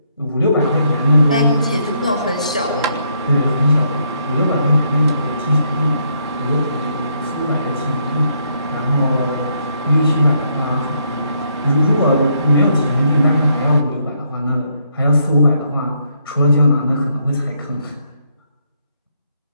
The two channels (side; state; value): both; inverted; correlation -0.73